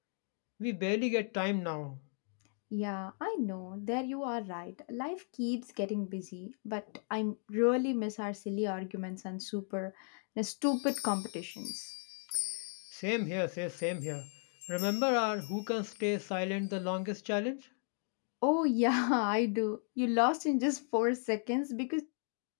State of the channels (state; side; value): silent; right; 54 dB below the other